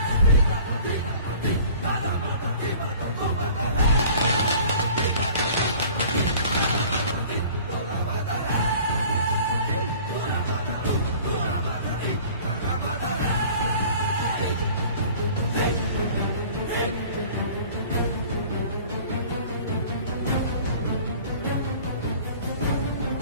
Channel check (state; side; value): inverted; both; correlation -0.47